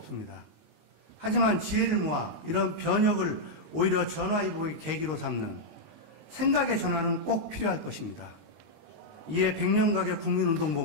하지만 지혜를 모아 이런 변혁을 오히려 전화위복의 계기로 삼는 생각의 전환은 꼭 필요할 것입니다. 이에 백년가게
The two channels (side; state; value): left; late; 19 ms